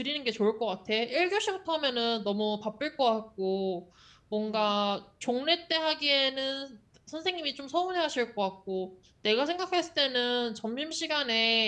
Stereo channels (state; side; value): identical; both; correlation 1.00